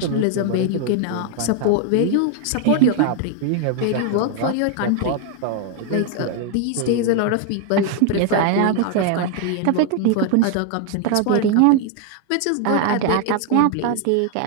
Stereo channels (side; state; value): both; different; correlation 0.00